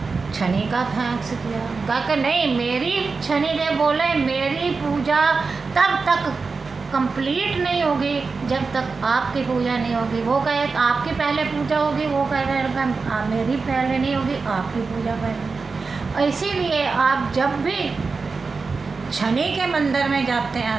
शनि का थैंक्स किया, कहा कि नहीं, मेरी शनि देव बोले मेरी पूजा तब तक कंप्लीट नहीं होगी जब तक आपकी पूजा नहीं होगी। वो कहे आपकी पहले पूजा होगी, वो कह रहे मेरी पहले नहीं होगी, आपकी पूजा पहले। इसीलिए आप जब भी शनि के मंदिर में जाते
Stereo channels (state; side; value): quieter; left; 4.5 dB